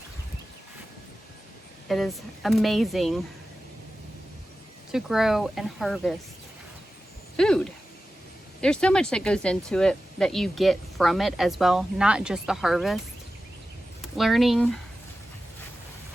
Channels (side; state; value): both; normal; correlation 0.94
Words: It is amazing to grow and harvest food. There's so much that goes into it that you get from it as well, not just the harvest. Learning